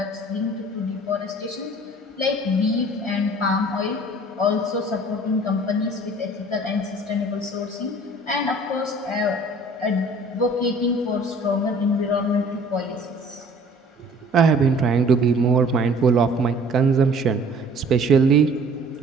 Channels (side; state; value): both; normal; correlation 0.50